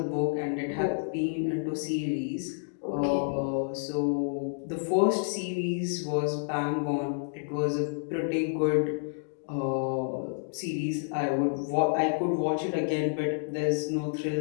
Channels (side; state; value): right; silent; digital silence